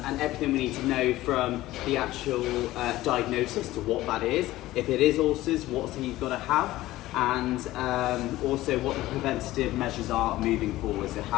everything we need to know from the actual diagnosis to what that is. If it is ulcers, what's he got to have, and also what the preventative measures are moving forward, so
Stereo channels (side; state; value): right; quieter; 16.5 dB